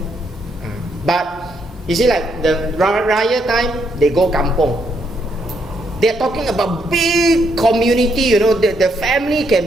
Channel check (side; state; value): both; normal; correlation 0.75